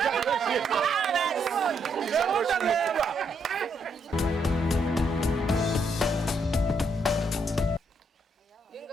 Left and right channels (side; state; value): both; normal; correlation 0.75